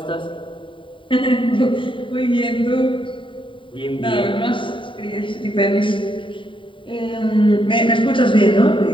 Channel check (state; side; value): late; right; 0.25 ms